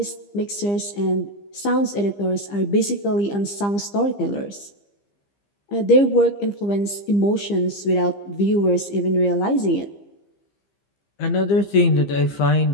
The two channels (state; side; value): late; right; 15 ms